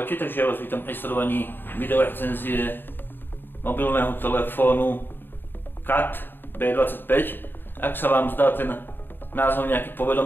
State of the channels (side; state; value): right; late; 0.096 ms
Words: takže ja vás vítam pri sledovaní videorecenzie mobilného telefónu CAT B25. Ak sa vám zdá ten názov nejaký